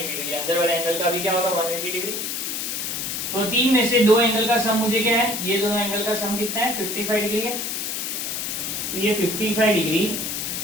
degree. अंदर वाले एंगल का भी क्या होगा, 180 डिग्री। तो तीन में से दो एंगल का सम मुझे क्या है, ये दोनों एंगल का सम कितना है, 55 डिग्री है। तो ये 55 डिग्री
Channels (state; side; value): noise; left; hiss, 3 dB below the sound